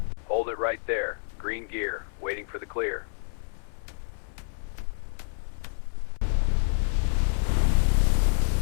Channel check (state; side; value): silent; right; 58 dB below the other